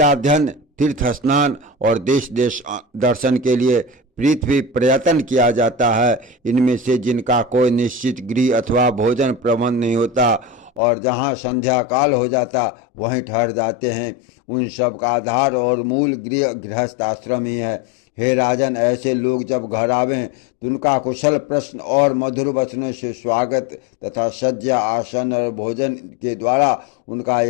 तीर्थ स्नान और देश देश दर्शन के लिए पृथ्वी पर्यटन किया जाता है। इनमें से जिनका कोई निश्चित गृह अथवा भोजन प्रबंध नहीं होता और जहाँ संध्या काल हो जाता वहीं ठहर जाते हैं, उन सब का आधार और मूल गृहस्थ आश्रम ही है। हे राजन, ऐसे लोग जब घर आवें तो उनका कुशल प्रश्न और मधुर वचनों से स्वागत तथा सज्जा, आसन और भोजन के द्वारा उनका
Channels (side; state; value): right; drops out; at 10.8 s